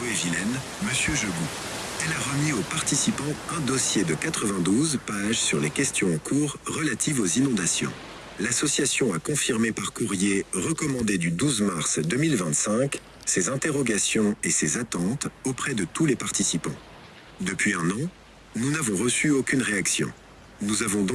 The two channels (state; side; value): identical; both; correlation 1.00